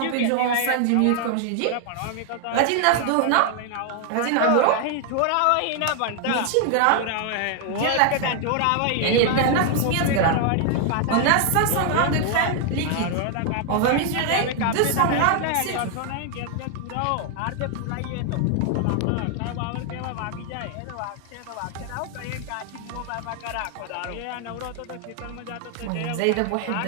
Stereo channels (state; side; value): different; both; correlation 0.00